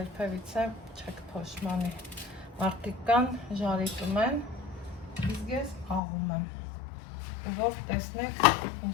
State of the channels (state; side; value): drops out; right; at 6.0 s